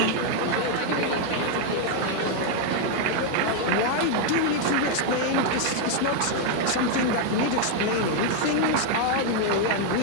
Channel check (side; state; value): both; different; correlation 0.00